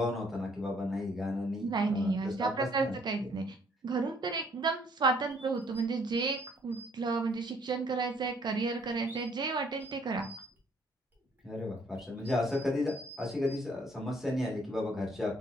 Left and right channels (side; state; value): both; normal; correlation 0.64